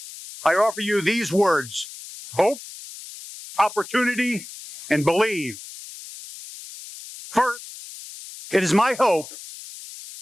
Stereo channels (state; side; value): noise; left; hiss, 14 dB below the sound